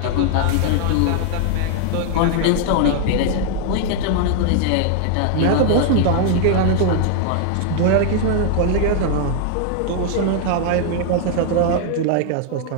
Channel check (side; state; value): both; different; correlation 0.00